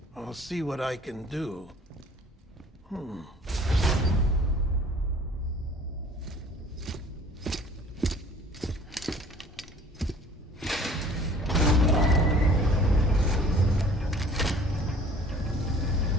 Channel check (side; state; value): both; normal; correlation 0.50